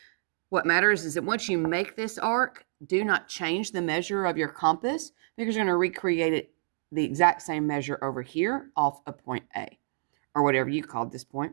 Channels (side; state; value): left; silent; digital silence